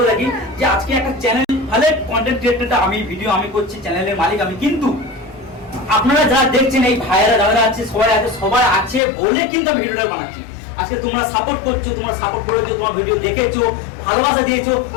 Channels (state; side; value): drops out; right; at 9.0 s